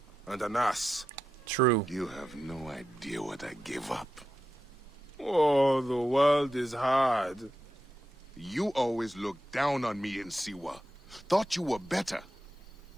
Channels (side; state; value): both; normal; correlation 0.89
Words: and an ass. True. You have no idea what I gave up. Oh, the world is hard. You always looked down on me in Siwa. Thought you were better.